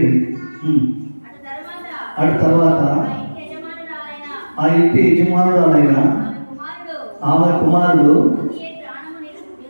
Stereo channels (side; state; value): both; inverted; correlation -1.00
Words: అటు తర్వాత ఆ ఇంటి యజమానురాలైన ఆమె కుమారుడు